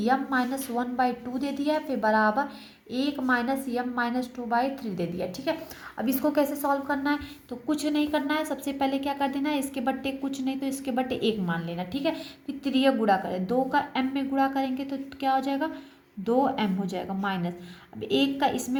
यम -1/2 दे दिया, फिर बराबर 1 - यम -2/3 दे दिया, ठीक है। अब इसको कैसे सॉल्व करना है, तो कुछ नहीं करना है, सबसे पहले क्या कर देना है, इसके बट्टे कुछ नहीं तो इसके बट्टे 1 मान लेना, ठीक है। फिर 3 गुणा करें, 2 का m में गुणा करेंगे तो क्या हो जाएगा 2m हो जाएगा माइनस। अब 1 का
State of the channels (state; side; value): identical; both; correlation 1.00